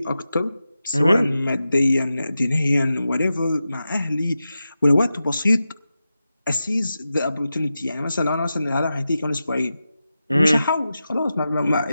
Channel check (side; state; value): both; inverted; correlation -0.92